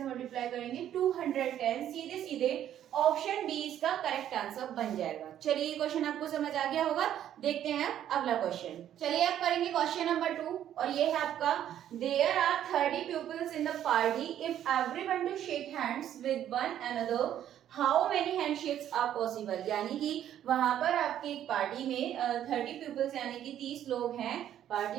मल्टीप्लाई करेंगे 210। सीधे सीधे ऑप्शन बी इसका करेक्ट आंसर बन जाएगा। चलिए ये क्वेश्चन आपको समझ आ गया होगा। देखते हैं अगला क्वेश्चन। चलिए आप करेंगे क्वेश्चन नंबर 2 और ये है आपका there are 30 peoples in the party if everyone to shake hands with one another how many handshakes are possible. यानी कि वहां पर आपकी एक पार्टी में 30 पीपल्स यानी कि 30 लोग हैं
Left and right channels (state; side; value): quieter; left; 10.9 dB